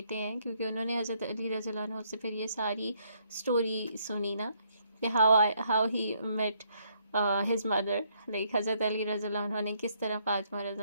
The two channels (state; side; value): inverted; both; correlation -0.70